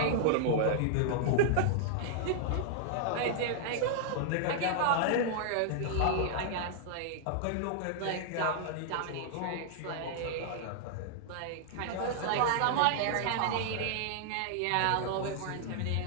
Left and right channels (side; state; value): both; different; correlation -0.01